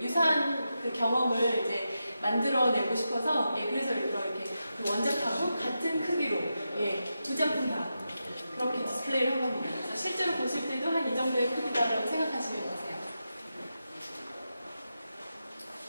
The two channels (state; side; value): inverted; both; correlation -0.89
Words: 유사한 경험을 이제 만들어내고 싶어서 그래서 이렇게 원작하고 같은 크기로 두 작품 다 그렇게 디스플레이를 한 겁니다. 그래서 실제로 보실 때도 한 이 정도의 크기다라고 생각하시면 되세요.